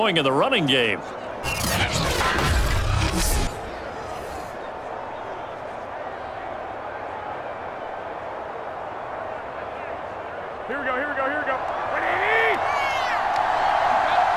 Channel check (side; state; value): both; identical; correlation 1.00